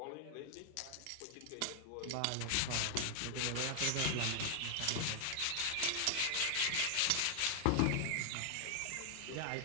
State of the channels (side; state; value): both; different; correlation 0.00